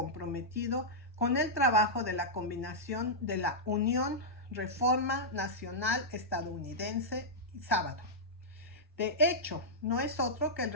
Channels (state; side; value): normal; both; correlation -0.09